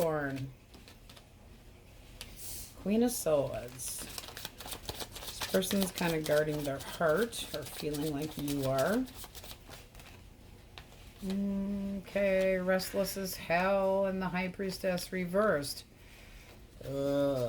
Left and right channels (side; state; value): both; identical; correlation 1.00